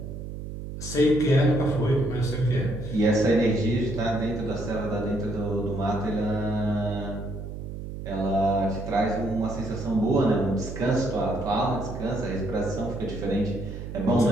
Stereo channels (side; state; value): right; noise; hum, 8 dB below the sound